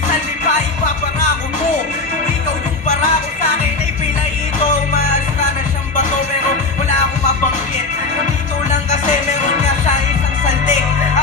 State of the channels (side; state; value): right; quieter; 3.7 dB